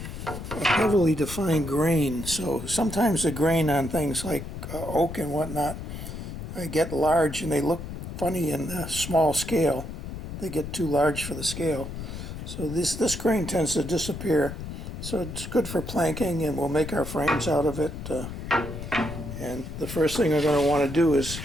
heavily defined grain. So sometimes the grain on things like oak and whatnot get large and they look funny in the small scale. They get too large for the scale. So this grain tends to disappear. So it's good for planking, and we'll make our frames out of it. And the first thing we're going to want to do is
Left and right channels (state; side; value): noise; left; rumble, 8 dB below the sound